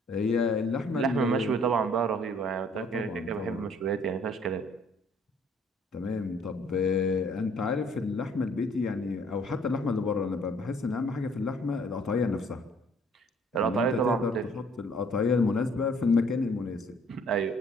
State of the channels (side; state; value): both; normal; correlation 0.59